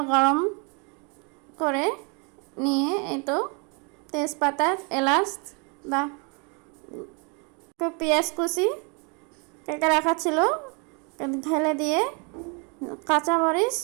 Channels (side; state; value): left; quieter; 34.1 dB